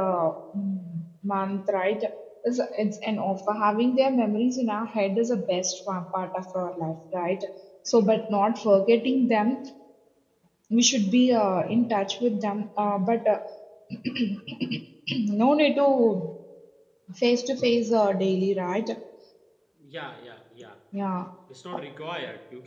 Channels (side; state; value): both; identical; correlation 1.00